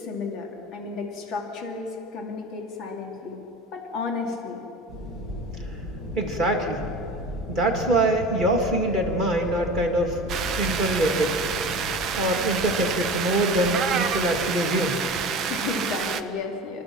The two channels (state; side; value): normal; both; correlation 0.34